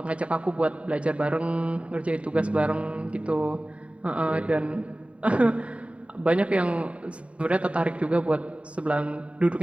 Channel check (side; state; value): left; late; 0.063 ms